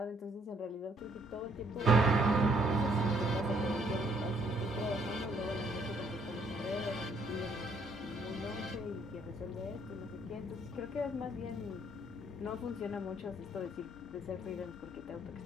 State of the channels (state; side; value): normal; both; correlation 0.67